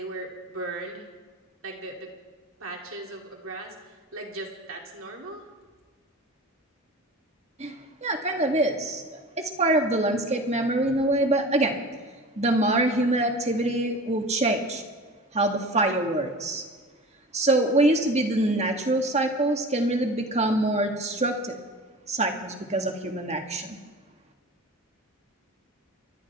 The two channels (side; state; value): both; normal; correlation 0.37